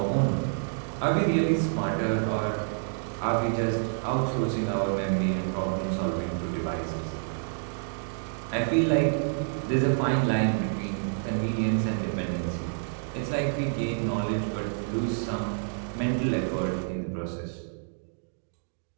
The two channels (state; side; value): silent; left; digital silence